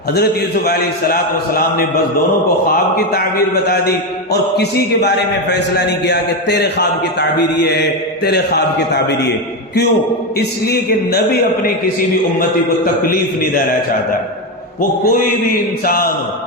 حضرت یوسف علیہ السلام نے بس دونوں کو خواب کی تعبیر بتا دی اور کسی کے بارے میں فیصلہ نہیں کیا کہ تیرے خواب کی تعبیر یہ ہے، تیرے خواب کی تعبیر یہ۔ کیوں؟ اس لیے کہ نبی اپنے کسی بھی امتی کو تکلیف نہیں دینا چاہتا، وہ کوئی بھی انسان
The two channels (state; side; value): normal; both; correlation 0.11